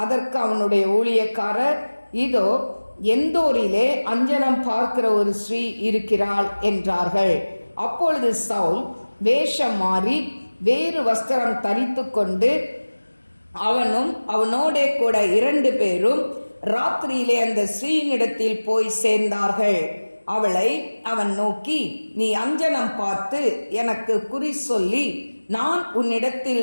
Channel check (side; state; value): both; inverted; correlation -1.00